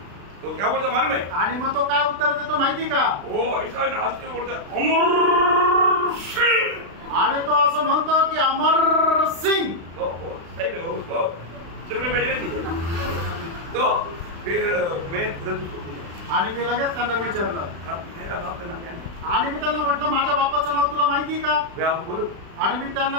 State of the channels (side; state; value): left; late; 36 ms